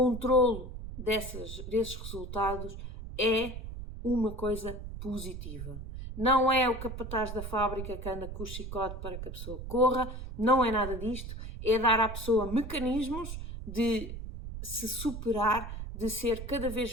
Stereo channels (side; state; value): right; noise; rumble, 8 dB below the sound